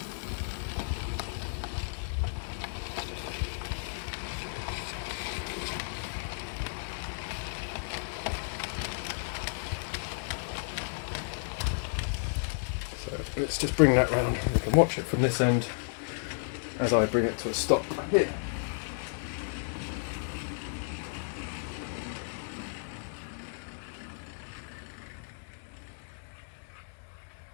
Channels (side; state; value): right; silent; digital silence